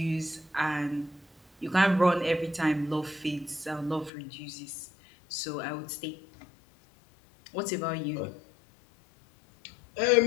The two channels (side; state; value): right; drops out; at 4.1 s